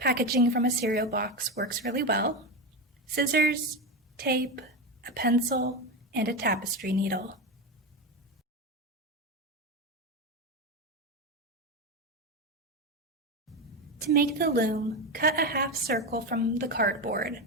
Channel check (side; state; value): both; normal; correlation 0.16